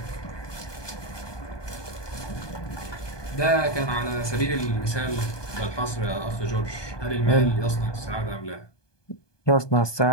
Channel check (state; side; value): late; right; 1.2 ms